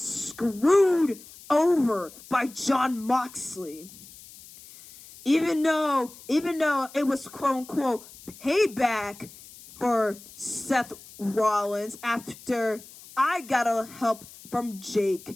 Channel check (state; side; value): noise; left; hiss, 19 dB below the sound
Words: over by Jon Moxley. Even though it was quote-unquote payback for Seth Rollins after I got a help from